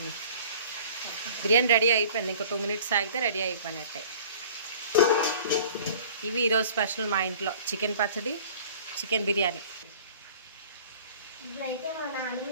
బిర్యానీ రెడీ అయిపోయింది, ఇంకా 2 minutes ఆగితే రెడీ అయిపోయినట్టే. ఇవి ఈరోజు స్పెషల్ మా ఇంట్లో, చికెన్ పచ్చడి, చికెన్ బిర్యానీ. ఇప్పుడైతే మా నాన్నమ్మ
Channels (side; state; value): both; inverted; correlation -0.48